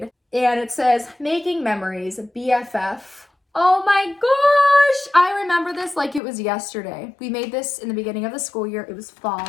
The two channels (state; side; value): drops out; right; at 6.2 s